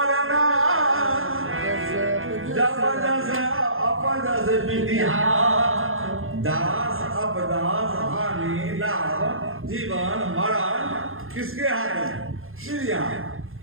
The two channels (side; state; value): left; late; 0.60 ms